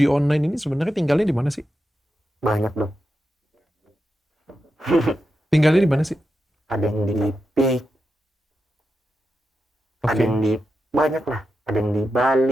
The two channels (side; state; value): both; normal; correlation 0.88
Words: online ini sebenarnya tinggalnya di mana sih? Banyak dong. Tinggalnya di mana sih? Ada yang di PIK, ada yang di banyak lah, ada yang di